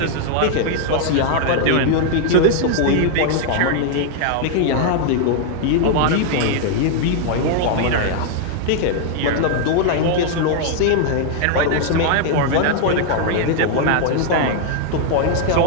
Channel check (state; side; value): different; both; correlation 0.00